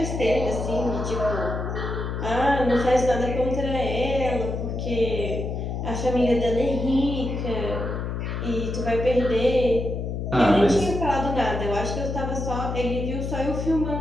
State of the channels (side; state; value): left; noise; hum, 3 dB below the sound